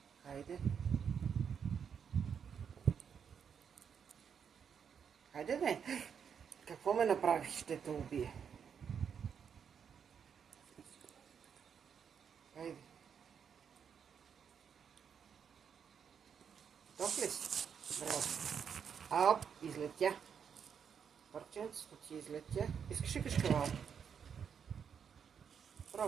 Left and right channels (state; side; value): quieter; left; 7.3 dB